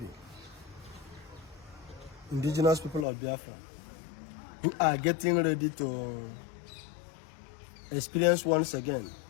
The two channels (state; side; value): drops out; right; at 3.1 s